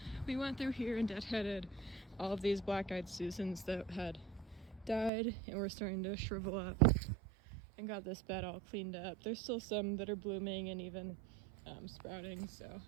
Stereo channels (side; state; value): left; drops out; at 5.1 s